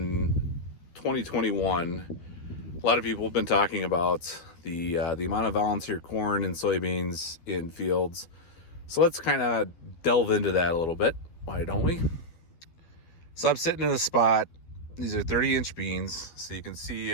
2021, a lot of people have been talking about the amount of volunteer corn and soybeans in fields. So let's kind of delve into that a little bit. Why don't we? So I'm sitting in a spot. These are 30-inch beans, so you can see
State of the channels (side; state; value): right; late; 12 ms